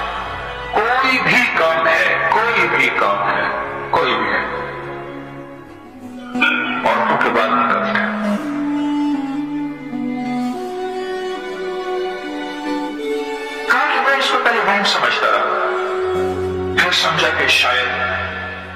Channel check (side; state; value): both; identical; correlation 1.00